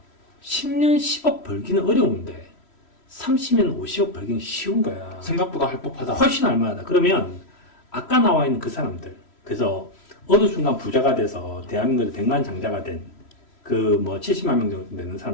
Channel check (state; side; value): late; right; 3.1 ms